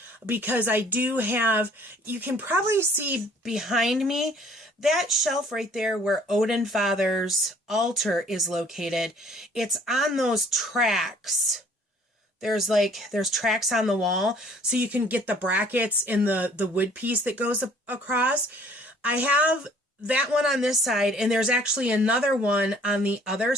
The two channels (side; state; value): both; normal; correlation 0.57